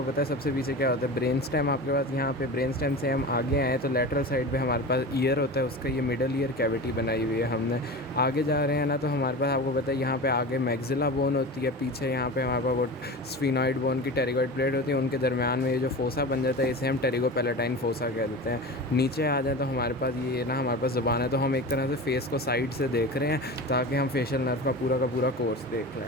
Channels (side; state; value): both; normal; correlation 0.30